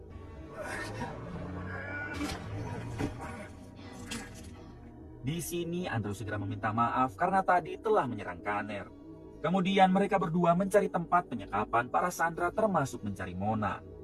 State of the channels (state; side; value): identical; both; correlation 1.00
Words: Di sini Andrew segera meminta maaf karena tadi telah menyerang Kanner. Kemudian mereka berdua mencari tempat penyekapan para sandera termasuk mencari Mona.